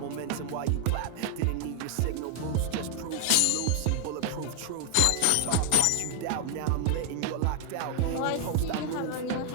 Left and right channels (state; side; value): different; both; correlation 0.00